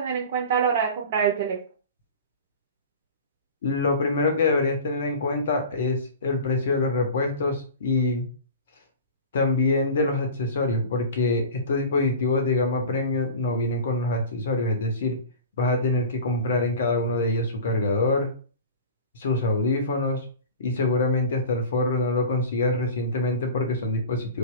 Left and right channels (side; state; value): both; inverted; correlation -0.36